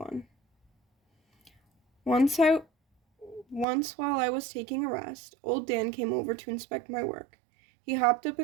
Once while I was taking a rest, old Dan came over to inspect my work. He hopped up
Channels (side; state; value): left; drops out; at 3.7 s